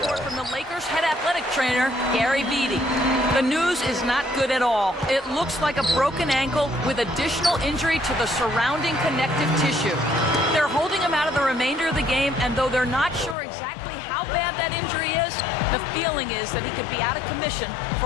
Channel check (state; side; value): drops out; right; at 13.4 s